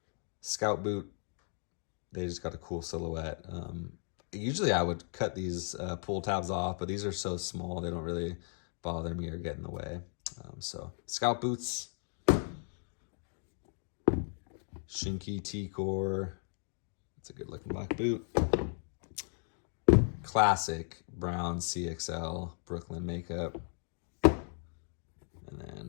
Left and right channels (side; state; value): right; silent; 54 dB below the other